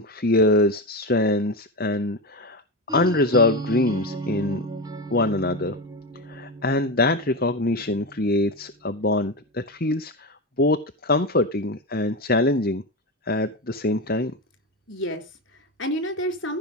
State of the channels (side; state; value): both; normal; correlation 0.18